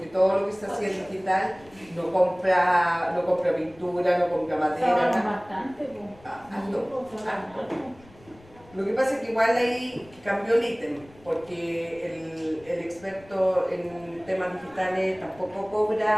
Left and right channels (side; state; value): left; noise; rumble, 25 dB below the sound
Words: todo lo que se hacía en digital no compra pintura, no compra madera, nada. Bastante, Lo que pasa es que igual ahí cambió el ítem, porque el experto en temas digitales tampoco